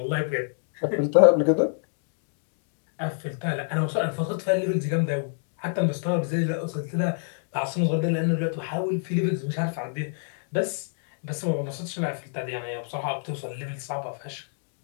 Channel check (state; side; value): silent; right; digital silence